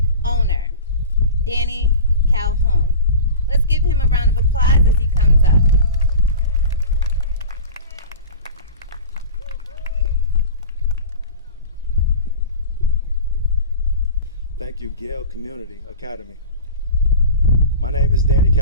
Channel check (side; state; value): both; inverted; correlation -0.35